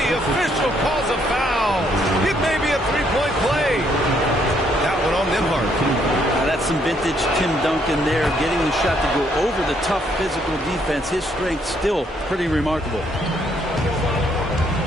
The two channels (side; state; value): both; normal; correlation 0.70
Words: official calls a foul. It may be a three-point play. That one on Nembhard. That's some vintage Tim Duncan there, getting the shot to go over the tough physical defense. His strength still pretty remarkable.